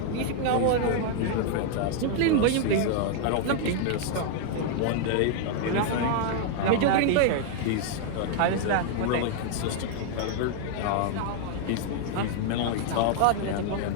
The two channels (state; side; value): different; both; correlation 0.00